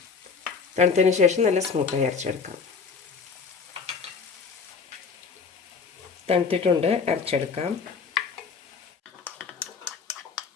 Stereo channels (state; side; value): quieter; right; 5.3 dB